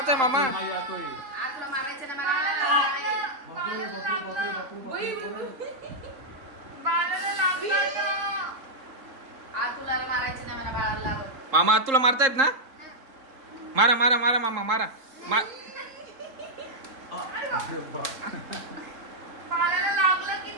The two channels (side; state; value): left; late; 3.8 ms